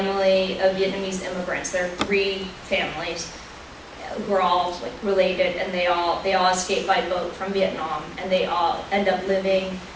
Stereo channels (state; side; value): identical; both; correlation 1.00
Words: of Vietnamese immigrants. There are 3 families who are all like related, and they all escaped by boat from Vietnam, and they all end up living